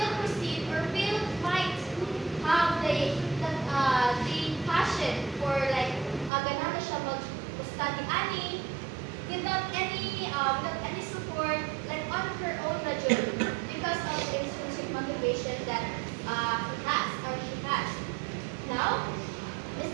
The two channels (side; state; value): left; drops out; at 6.3 s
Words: proceed or might have the passion for like ganahan na siya mag-study ani without any support like on her own na journey because of the intrinsic motivation that he has or she has. Now, is